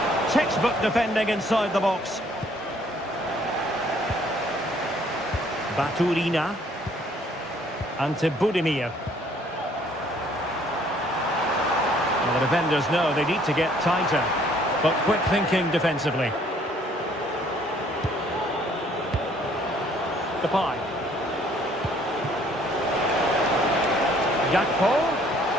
Textbook defending inside the box. Baturina. Ante Budimir. Well, the defenders know they need to get tighter, but quick thinking defensively. Depay. Gakpo.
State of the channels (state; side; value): normal; both; correlation 0.61